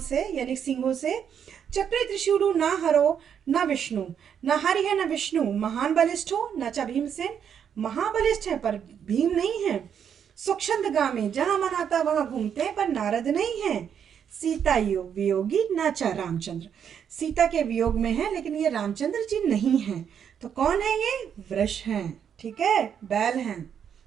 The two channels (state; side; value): quieter; left; 8.2 dB